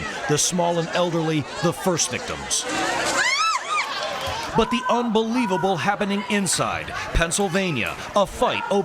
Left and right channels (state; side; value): identical; both; correlation 1.00